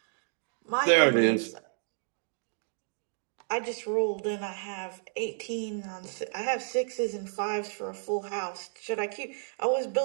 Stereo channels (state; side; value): silent; left; digital silence